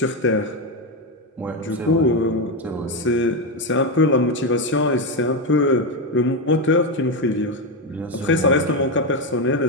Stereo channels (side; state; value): both; normal; correlation 0.09